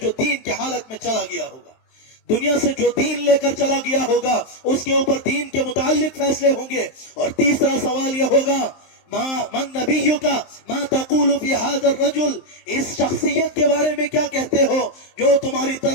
جو دین کی حالت میں چلا گیا ہوگا. دنیا سے جو دین لے کر چلا گیا ہوگا اس کے اوپر دین کے متعلق فیصلے ہوں گے. اور تیسرا سوال یہ ہوگا من نبیک ما تقول فی ھذا الرجل, اس شخصیت کے بارے میں کیا کہتے ہو جو تمہاری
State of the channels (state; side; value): late; right; 23 ms